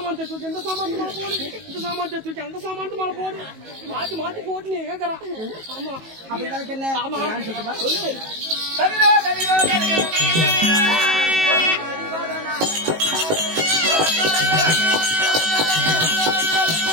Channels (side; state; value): left; late; 19 ms